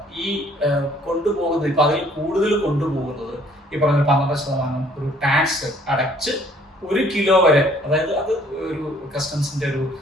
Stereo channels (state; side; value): normal; both; correlation 0.59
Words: ഈ കൊണ്ടുപോകുന്നത് ഇപ്പൊ അതിൽ കൂടുതൽ കൊണ്ടുപോകുന്നത് ഈ പറഞ്ഞ 12% ഒരു ടാക്സ് അടച്ച് 1 കിലോ വരെ, അതായത് അത് ഒരു കസ്റ്റംസിന്റെ ഒരു